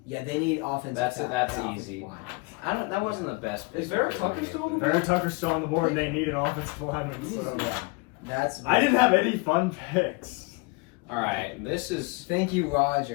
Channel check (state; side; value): quieter; right; 26.6 dB